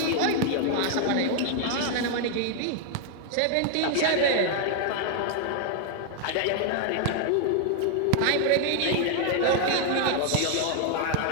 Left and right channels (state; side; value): different; both; correlation 0.00